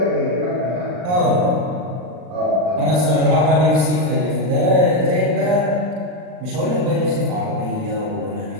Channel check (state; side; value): late; left; 39 ms